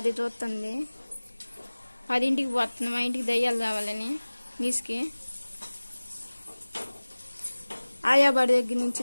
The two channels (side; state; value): both; inverted; correlation -1.00